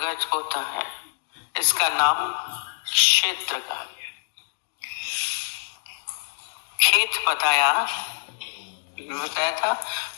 होता है। इसका नाम क्षेत्र कहा गया। खेत बताया था,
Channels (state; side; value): silent; right; digital silence